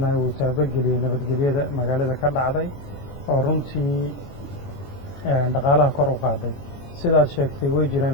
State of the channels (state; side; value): late; right; 22 ms